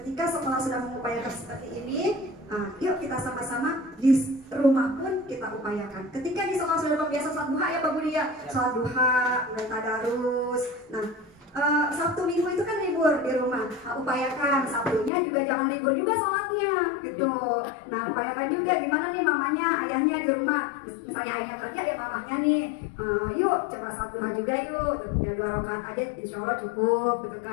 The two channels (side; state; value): right; drops out; at 15.1 s